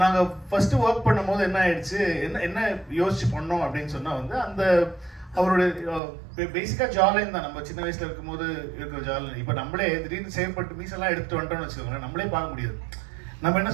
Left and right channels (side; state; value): left; drops out; at 6.0 s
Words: நாங்கள் ஃபர்ஸ்ட் ஒர்க் பண்ணும்போது என்ன ஆயிடுச்சு, என்ன யோசிச்சு பண்ணோம் அப்படின்னு சொன்னால் வந்து அந்த அவருடைய பேசிக்காக ஜாலைன் தான். நம்ம சின்ன வயசில் இருக்கும்போது இருக்கிற ஜாலைன் இப்போ நம்மளே திடீர்னு சேவ் பண்ணிட்டு மீசெல்லாம் எடுத்துட்டு வந்துட்டோம்னு வச்சுக்கோங்களேன், நம்மளே பார்க்க முடியாது. நம்ம என்ன